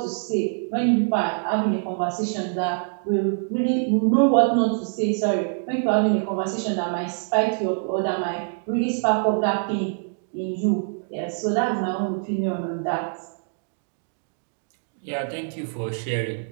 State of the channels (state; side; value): silent; left; digital silence